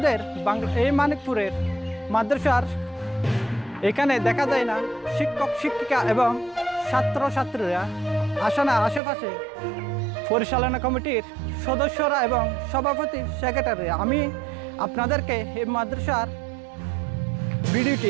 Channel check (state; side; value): drops out; left; at 9.0 s